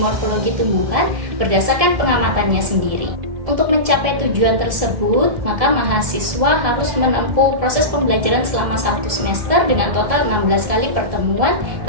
morfologi tumbuhan berdasarkan pengamatannya sendiri. Untuk mencapai tujuan tersebut, maka mahasiswa harus menempuh proses pembelajaran selama 1 semester dengan total 16 kali pertemuan,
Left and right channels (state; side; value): late; left; 1.6 ms